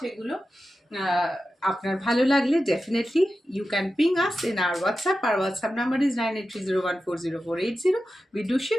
এগুলো। আপনার ভালো লাগলে definitely you can ping us in our WhatsApp. Our WhatsApp number is 9830140480. We do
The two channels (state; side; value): normal; both; correlation 0.92